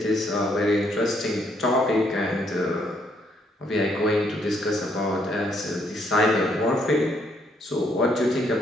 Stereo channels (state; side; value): normal; both; correlation 0.71